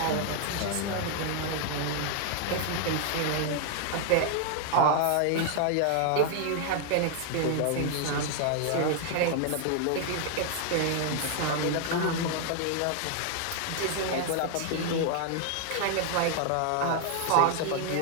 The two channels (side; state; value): both; different; correlation 0.00